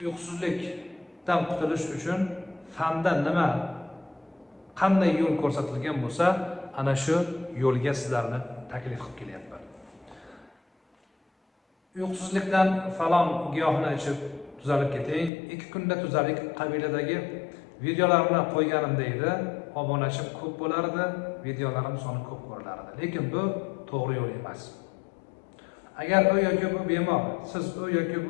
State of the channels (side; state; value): right; drops out; at 15.3 s